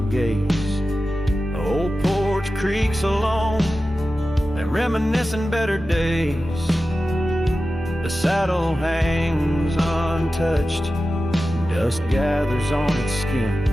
gaze. The old porch creaks alone and reminiscing better days. The saddle hangs untouched, dust gathers on its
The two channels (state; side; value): normal; both; correlation 0.94